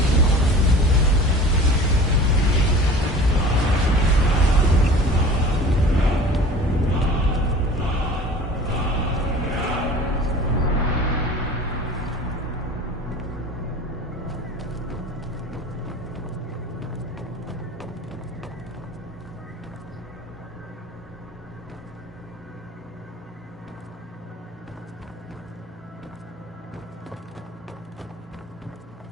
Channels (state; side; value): normal; both; correlation 0.42